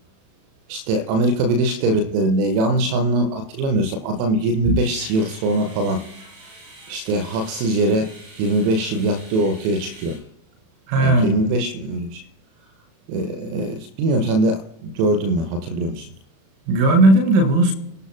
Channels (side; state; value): left; late; 36 ms